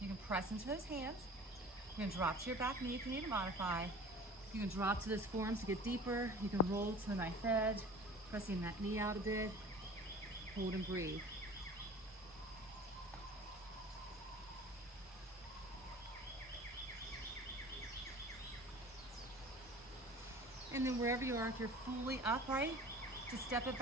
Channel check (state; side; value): normal; both; correlation 0.42